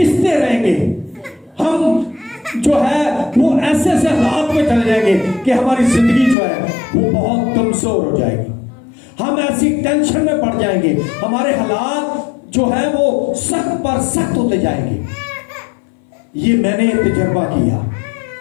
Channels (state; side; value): drops out; right; at 6.4 s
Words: रहेंगे, हम जो है वो ऐसे ऐसे हालात में चले जाएंगे कि हमारी जिंदगी जो है वो बहुत कमजोर हो जाएगी। हम ऐसी टेंशन में पड़ जाएंगे, हमारे हालात जो है वो सख्त पर सख्त होते जाएंगे। ये मैंने तजर्बा किया,